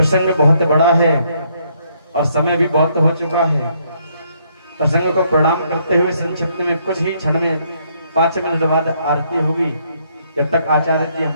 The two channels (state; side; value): inverted; both; correlation -0.71